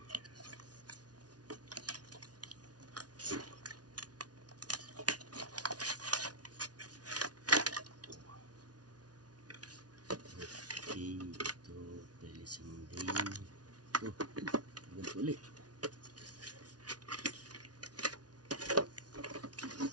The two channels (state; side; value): late; left; 0.69 ms